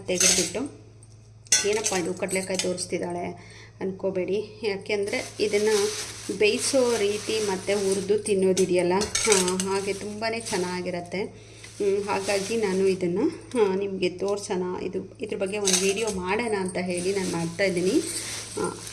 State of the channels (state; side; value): identical; both; correlation 1.00